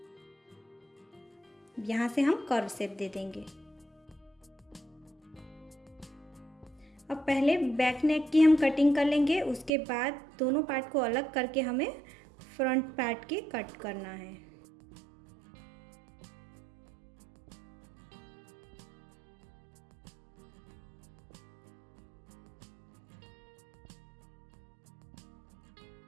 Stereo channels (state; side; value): drops out; left; at 9.7 s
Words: यहाँ से हम कर्व शेप दे देंगे। अब पहले बैक नेक की हम कटिंग कर लेंगे, उसके बाद दोनों पार्ट को अलग करके हमें फ्रंट पार्ट की कट करना है।